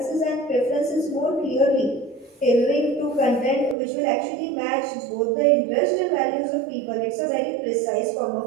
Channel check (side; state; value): left; drops out; at 3.8 s